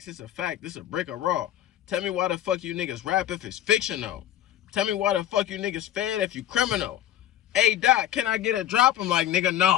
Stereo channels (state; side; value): quieter; right; 11.7 dB